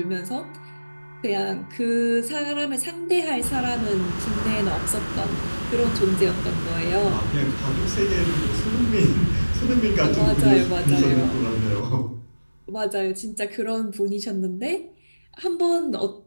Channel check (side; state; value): both; inverted; correlation -1.00